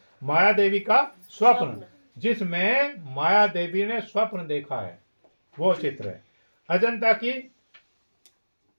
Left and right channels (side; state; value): both; inverted; correlation -1.00